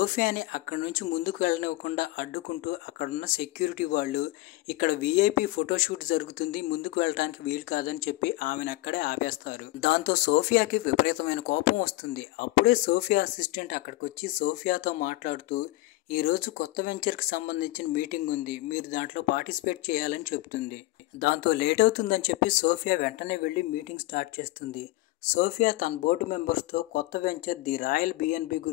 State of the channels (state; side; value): quieter; right; 19.3 dB